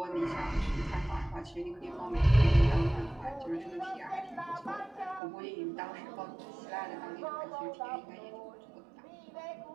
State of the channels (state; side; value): drops out; left; at 5.2 s